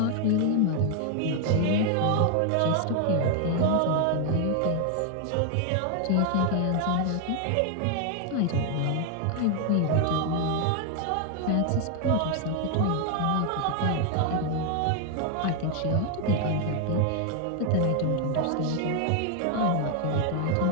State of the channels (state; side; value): different; both; correlation 0.00